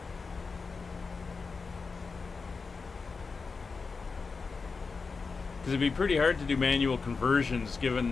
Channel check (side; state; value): right; quieter; 4.6 dB